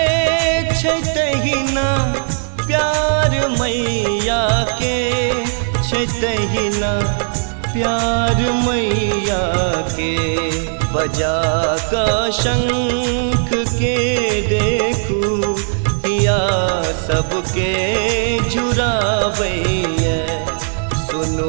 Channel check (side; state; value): left; silent; digital silence